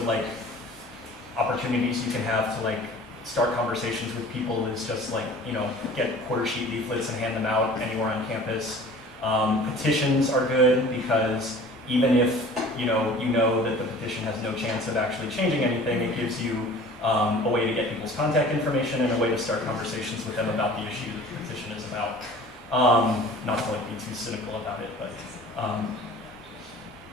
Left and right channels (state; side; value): normal; both; correlation 0.45